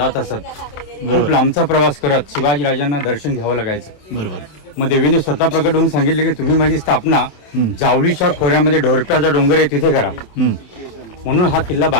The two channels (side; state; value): right; late; 27 ms